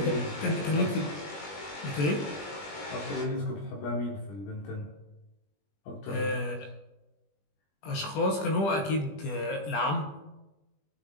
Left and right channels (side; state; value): right; late; 20 ms